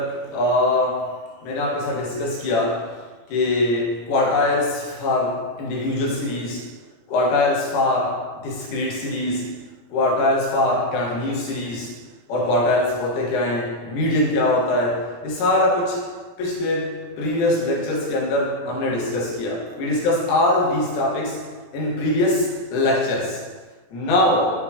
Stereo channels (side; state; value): right; late; 17 ms